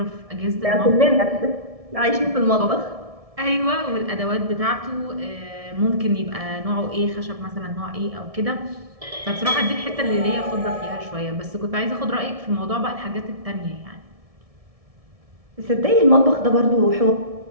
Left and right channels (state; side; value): late; left; 1.7 ms